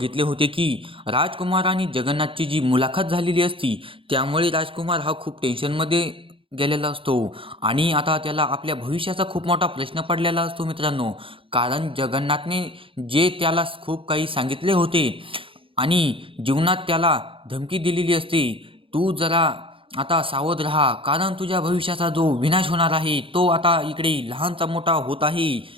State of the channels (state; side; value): late; left; 0.26 ms